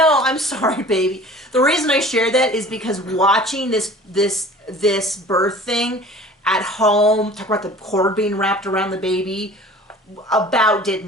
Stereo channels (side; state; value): both; normal; correlation 0.45